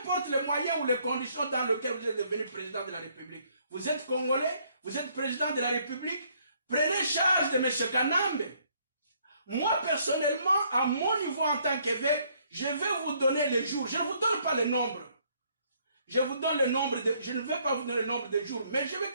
les moyens ou les conditions dans lesquelles vous êtes devenu président de la République. Vous êtes Congolais, vous êtes président de la République. Prenez charge de M. Kanambe. Moi, personnellement, à mon niveau en tant qu'évêque, je vais vous donner les jours. Je ne vous donne pas le nombre. Je vous donne le nombre je ne vais pas vous donner le nombre de jours, mais je vais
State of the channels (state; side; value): inverted; both; correlation -0.67